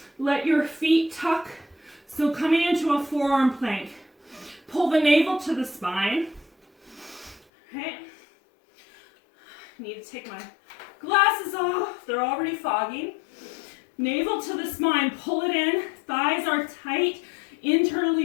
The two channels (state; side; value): drops out; right; at 7.5 s